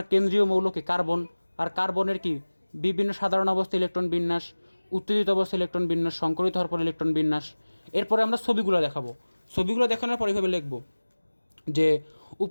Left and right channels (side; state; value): both; inverted; correlation -1.00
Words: কেন্দ্রীয় মৌলকে কার্বন, আর কার্বনের কি বিভিন্ন সাধারণ অবস্থা ইলেকট্রন বিন্যাস, উত্তেজিত অবস্থা ইলেকট্রন বিন্যাস, সংকরিত হওয়ার পর ইলেকট্রন বিন্যাস। এরপরে আমরা ছবিগুলো দেখাবো, ছবিগুলো দেখানোর পর এইভাবে লিখবো যে